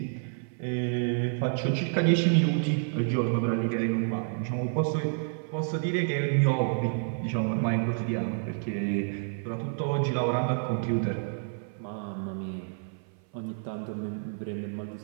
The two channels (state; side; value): silent; left; 56 dB below the other